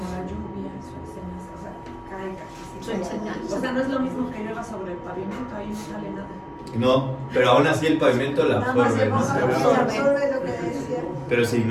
lluvia, su enseñanza, o sea, caiga. Su enseñanza. O sea, no es lo mismo que llueva sobre el pavimento, ahí no sale nada. No, pero aún así el pavimento la absorbe, ¿no? Absorbe lo que decía. Pero si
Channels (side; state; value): both; identical; correlation 1.00